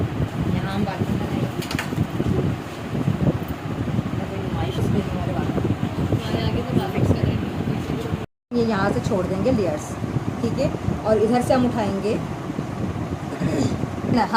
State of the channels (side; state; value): both; identical; correlation 1.00